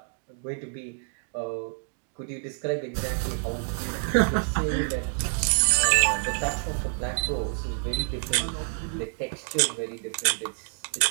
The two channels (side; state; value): left; silent; digital silence